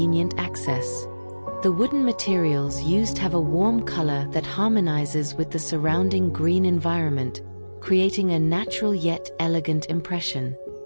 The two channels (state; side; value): inverted; both; correlation -1.00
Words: access. The wooden materials used have a warm color that harmonizes with the surrounding green environment, creating a natural yet elegant impression.